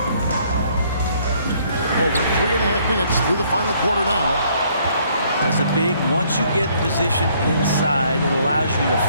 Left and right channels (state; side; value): inverted; both; correlation -0.65